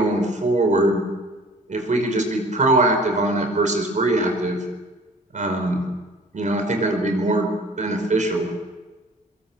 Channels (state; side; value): normal; both; correlation 0.49